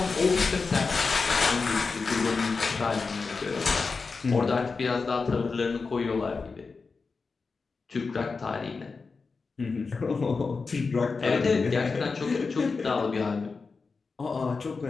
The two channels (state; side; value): quieter; right; 4.5 dB